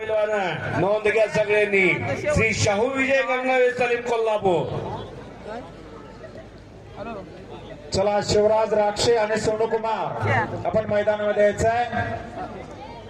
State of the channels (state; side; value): identical; both; correlation 1.00